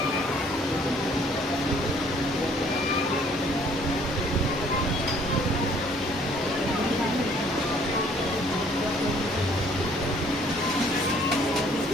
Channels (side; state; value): both; normal; correlation 0.60